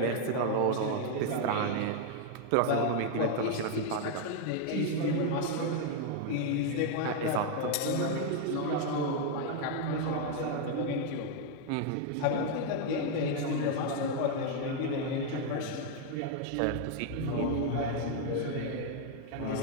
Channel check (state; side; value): different; both; correlation 0.00